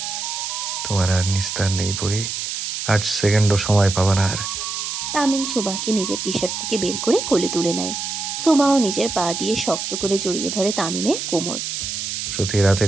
তোমার আর নিস্তার নেই পুরি, 8 সেকেন্ডও সময় পাবা না আর। তামিম সুভাকে নিজের টি শার্ট থেকে বের করে কোলে তুলে নেয়। সুভাও নিজের পা দিয়ে শক্ত করে জড়িয়ে ধরে তামিমের কোমর। প্রতি রাতে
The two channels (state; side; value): noise; right; hiss, 4 dB below the sound